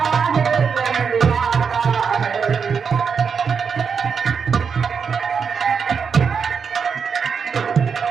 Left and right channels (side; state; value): left; quieter; 6.2 dB